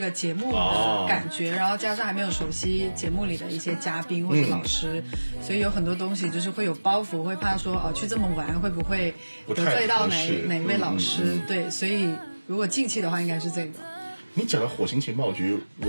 节目的感觉，然后加上还没有熟悉节目里的一些嘉宾或者老师，所以有很多东西就是会有包袱，会怕说去这么玩会不会得罪到哪位老师。对，所以如果近期的话应该是这个。你讲到火星情报局，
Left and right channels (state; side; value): inverted; both; correlation -1.00